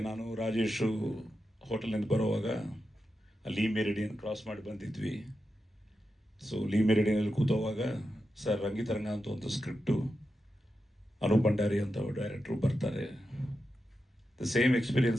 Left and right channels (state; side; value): normal; both; correlation 0.89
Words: ನಾನು ರಾಜೇಶು ಹೋಟೆಲ್ನಿಂದ ಬರೋವಾಗ ಲೀ ಮೆರಿಡಿಯನ್ ಕ್ರಾಸ್ ಮಾಡಿ ಬಂದಿದ್ವಿ. ಸೊ ಲೀ ಮೆರಿಡಿಯನಲ್ಲಿ ಕೂತೋವಾಗ ಸರ್ ರಂಗಿತರಂಗ ಅಂತ ಒಂದು ಸ್ಕ್ರಿಪ್ಟು, ಅನೂಪ್ ಭಂಡಾರಿ ಅಂತ ಡೈರೆಕ್ಟ್ರು ಬರ್ತಾರೆ. The same